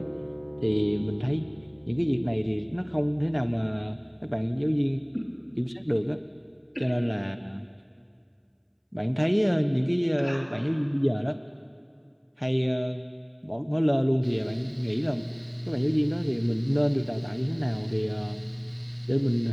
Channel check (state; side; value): identical; both; correlation 1.00